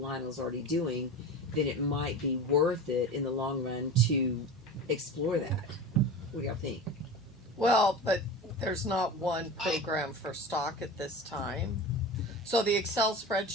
already doing, then it might be worth it in the long run to explore that. What do y'all think? Well, but there's not one program for stock at this time. So the Excel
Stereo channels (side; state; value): both; normal; correlation 0.30